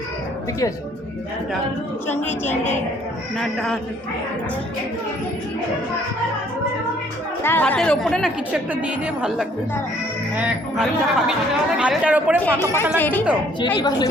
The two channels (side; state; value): both; normal; correlation 0.61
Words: ঠিকই আছে। চিংড়ি চিংড়ি না ডাল ভাতের ওপরে না কিছু একটা দিয়ে দিয়ে ভালো লাগবে। ভাতটার ওপরে ফাঁকা ফাঁকা লাগছে তো,